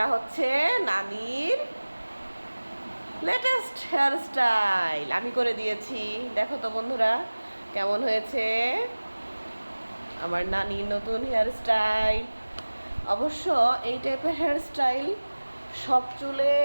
হচ্ছে নানির লেটেস্ট হেয়ারস্টাইল আমি করে দিয়েছি। দেখো তো বন্ধুরা কেমন হয়েছে আমার নানির নতুন হেয়ারস্টাইল। অবশ্য এই টাইপের হেয়ারস্টাইল সব চুলে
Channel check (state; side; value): inverted; both; correlation -1.00